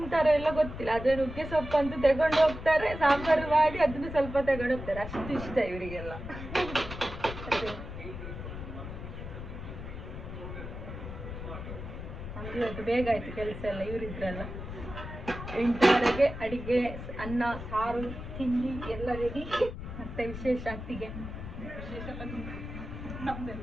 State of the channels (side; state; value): left; noise; rumble, 9 dB below the sound